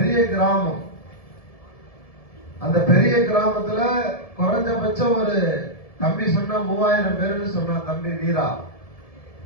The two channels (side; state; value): right; late; 1.7 ms